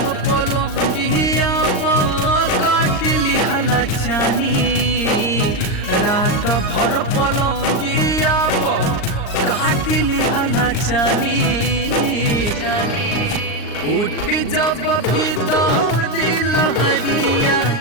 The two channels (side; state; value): right; late; 39 ms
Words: पलंगिया काट लिहला चानी रात भर पलंगिया काट लिहला चानी उठ जब भीतर लहरिया